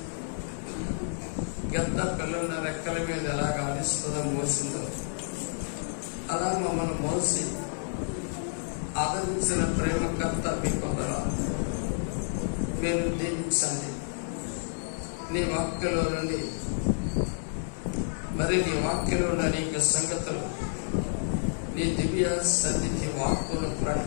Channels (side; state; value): right; silent; digital silence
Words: గద్ద పిల్లల రెక్కల మీద ఎలాగ ఆడిస్తుందో మోసిందో అలా మమ్మల్ని మోసి ఆదరించిన ప్రేమకర్త మీ పొందరాలు. మీరు దీవించండి. నీ వాక్యలో నుండి మరి నీ వాక్యలో ఉన్న అనేక సంగతులు నీ దివ్య సన్నిధి వాక్కులు